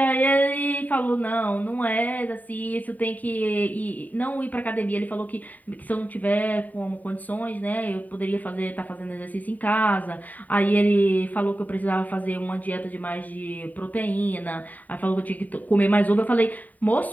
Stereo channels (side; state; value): right; late; 0.077 ms